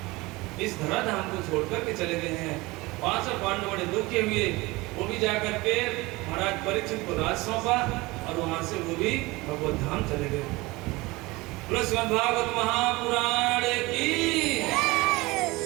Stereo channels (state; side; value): quieter; left; 22.1 dB